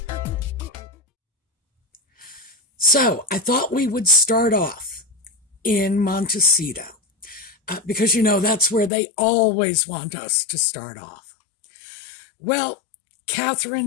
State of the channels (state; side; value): drops out; right; at 8.9 s